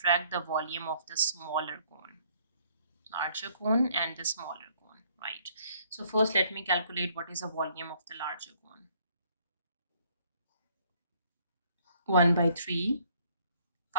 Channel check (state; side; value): inverted; both; correlation -0.64